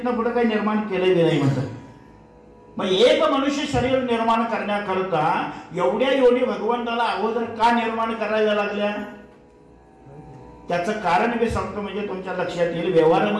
पुढे काही निर्माण केले बी नाही म्हणतात. मग एक मनुष्य शरीर निर्माण करण्याकरता एवढ्या योनी भगवंताला अगोदर का निर्माण करायला लागल्या? त्याचं कारण मी सांगतो म्हणजे तुमच्या लक्षात येईल.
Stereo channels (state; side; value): identical; both; correlation 1.00